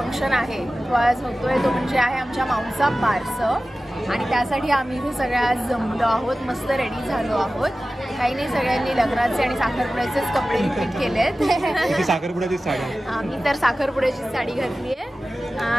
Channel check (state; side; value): normal; both; correlation 0.96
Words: आहे तो आज होतोय, तो म्हणजे आहे आमच्या माऊचा बारसं। आणि त्यासाठी आम्ही इथे सगळ्या जमलो आहोत, मस्त रेडी झालो आहोत। काही नाही, सगळ्यांनी लग्नाचे आणि साखरपुड्याचेच कपडे रिपीट केलेत। साखरपुड्याची साडी, आम्ही तर साखरपुड्याची साडी घातली आहे